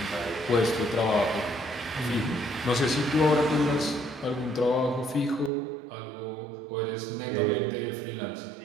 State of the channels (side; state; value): left; drops out; at 5.5 s